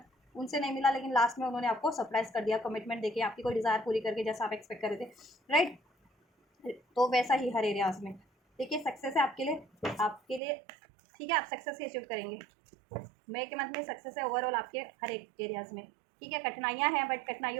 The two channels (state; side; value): drops out; left; at 10.4 s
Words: उनसे नहीं मिला, लेकिन लास्ट में उन्होंने आपको सरप्राइज कर दिया, कमिटमेंट देके आपकी कोई डिज़ायर पूरी करके, जैसा आप एक्सपेक्ट कर रहे थे, राइट। तो वैसा ही हर एरियाज में, देखिए सक्सेस है आपके लिए, ठीक है। आप सक्सेस ही अचीव करेंगे, मई के मंथ में सक्सेस है ओवरऑल आपके हर एक एरियाज़ में, ठीक है। कठिनाइयाँ हैं, बट